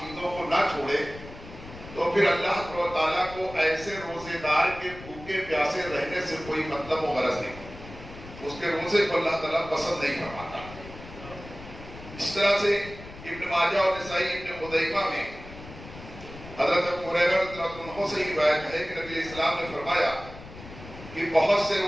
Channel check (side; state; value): left; noise; rumble, 15 dB below the sound